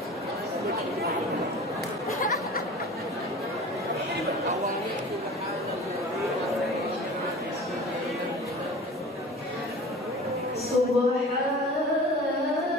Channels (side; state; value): both; normal; correlation 0.39